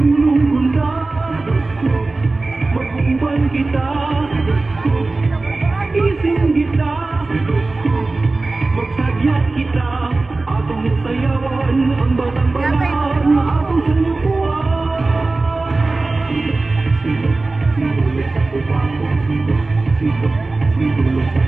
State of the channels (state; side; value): quieter; left; 3.4 dB